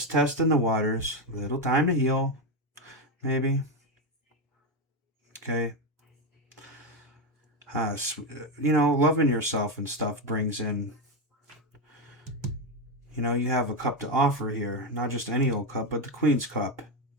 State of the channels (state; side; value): normal; both; correlation 0.09